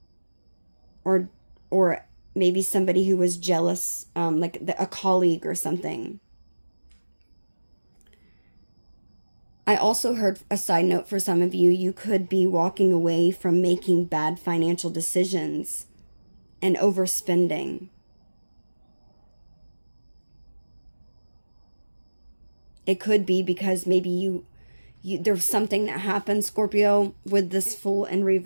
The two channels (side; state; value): both; inverted; correlation -1.00